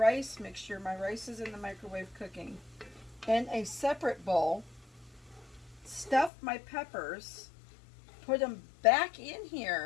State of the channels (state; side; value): drops out; right; at 6.3 s